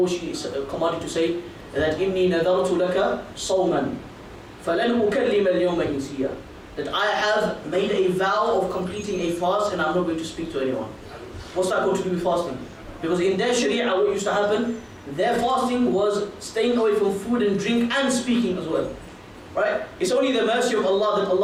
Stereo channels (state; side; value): identical; both; correlation 1.00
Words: she commanded to say? That إِنِّي نَذَرْتُ لَكَ صَوْمًا فَلَنْ أُكَلِّمَ الْيَوْمَ إِنْسِيًّا. That I have made a vow of completing a fast, and I'm not going to speak to anyone. What's that got to do with fasting? Because in their sharia, what used to happen, their fasting was staying away from food and drink and speaking as well, right? It's only the mercy of Allah that